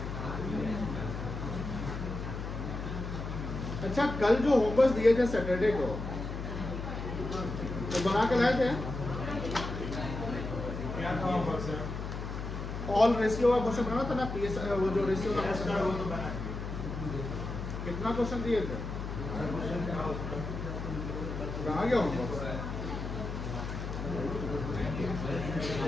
अच्छा, कल जो होमवर्क दिए थे सैटरडे को तो बना के लाए थे? क्या था होमवर्क सर? ऑल रेशियो का क्वेश्चन बना था ना, पीएस वो जो रेशियो का क्वेश्चन है वो तो बना। कितना क्वेश्चन दिए थे? कहाँ गया होमवर्क?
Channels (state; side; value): noise; left; hum, 6 dB below the sound